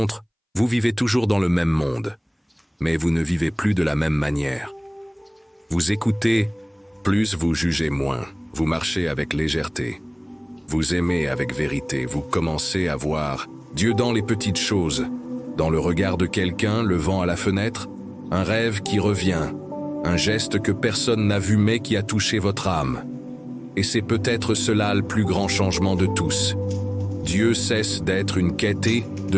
vous vivez toujours dans le même monde, mais vous ne vivez plus de la même manière. Vous écoutez, plus vous jugez moins, vous marchez avec légèreté, vous aimez avec vérité, vous commencez à voir Dieu dans les petites choses, dans le regard de quelqu'un, le vent à la fenêtre, un rêve qui revient, un geste que personne n'a vu mais qui a touché votre âme. Et c'est peut-être cela le plus grand changement de tous. Dieu cesse d'être une quête et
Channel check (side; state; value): both; identical; correlation 1.00